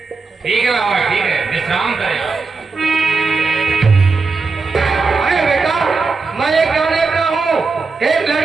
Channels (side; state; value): left; quieter; 4.3 dB